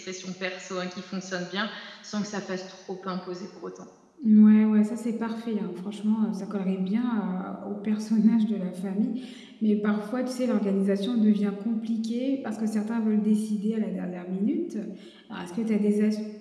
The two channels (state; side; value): identical; both; correlation 1.00